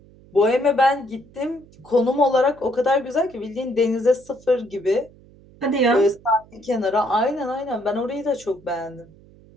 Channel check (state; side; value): noise; right; hum, 25 dB below the sound